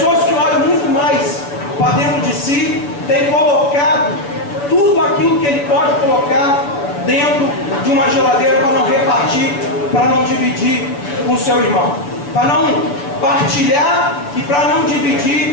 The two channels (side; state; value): right; late; 6.9 ms